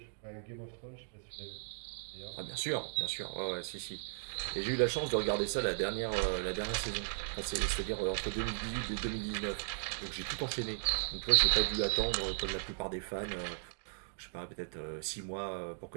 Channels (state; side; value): silent; left; digital silence